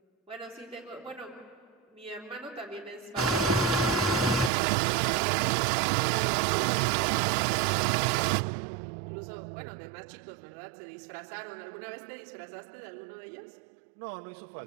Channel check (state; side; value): drops out; left; at 4.5 s